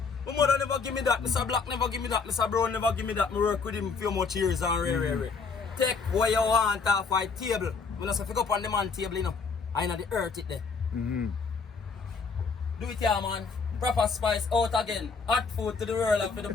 My mother never give me that, Mr. Black never give me that, Mr. Brown never give me that. I work with him a few much years and rare. take what you want off my table. When I say pick up on the man table, you know, I know the earth it there. Mm-hmm. Do it here, man. Proper spice out again. Hot food to the world and for the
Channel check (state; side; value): quieter; right; 5.0 dB